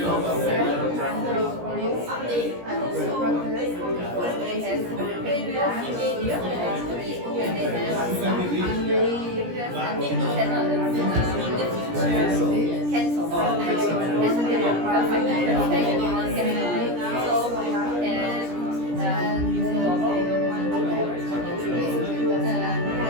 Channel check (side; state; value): left; late; 17 ms